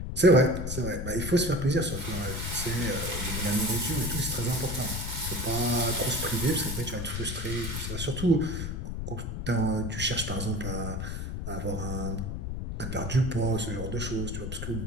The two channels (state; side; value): noise; left; rumble, 4 dB below the sound